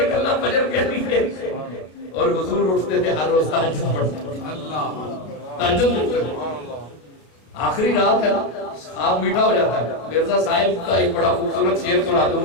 نکلنا فجر کے لیے، اور حضور اٹھتے تھے ہر روز تہجد پڑھتے تھے، تہجد پڑھتے تھے۔ آخری رات ہے نا، خواب میٹھا ہو جاتا ہے۔ مرزا صاحب کا ایک بڑا خوبصورت شعر سنا دوں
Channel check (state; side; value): late; right; 32 ms